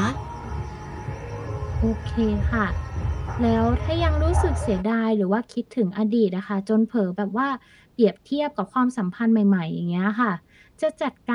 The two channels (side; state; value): both; identical; correlation 1.00